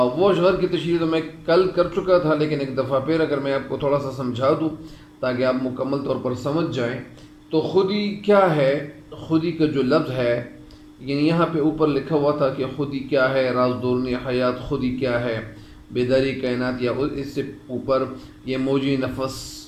اشعار کی تشریح تو میں کل کر چکا تھا، لیکن ایک دفعہ پھر اگر میں آپ کو تھوڑا سا سمجھا دوں تاکہ آپ مکمل طور پر سمجھ جائیں، تو خودی کیا ہے۔ خودی کا جو لفظ ہے، یعنی یہاں پہ اوپر لکھا ہوا تھا کہ خودی کیا ہے، راز دورنی حیات خودی کیا ہے، بیداری کائنات، یا اس سے اوپر یہ موجی نفس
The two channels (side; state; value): both; identical; correlation 1.00